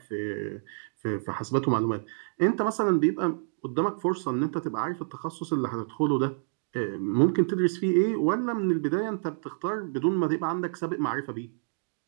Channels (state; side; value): silent; left; digital silence